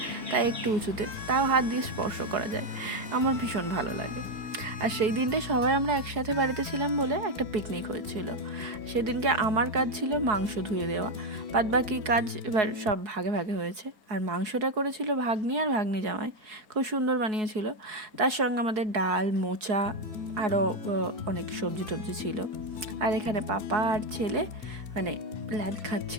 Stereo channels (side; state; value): left; late; 4.7 ms